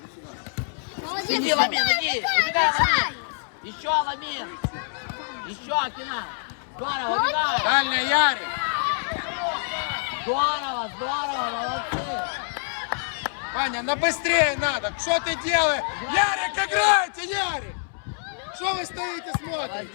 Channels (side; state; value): right; silent; 61 dB below the other